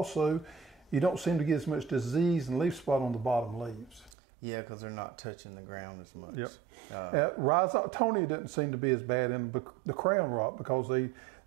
you don't seem to get as much disease and leaf spot on the bottom leaves. Yeah, because they're not touching the ground as much. Yep. Rhizoctonia doesn't seem to be as bad in the crown rot because they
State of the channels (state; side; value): drops out; left; at 4.1 s